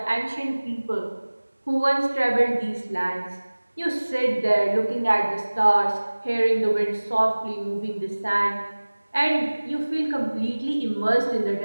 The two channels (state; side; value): inverted; both; correlation -1.00